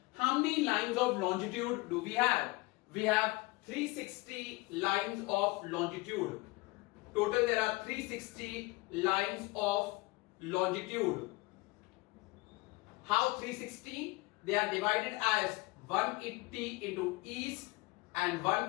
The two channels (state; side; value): quieter; right; 23.6 dB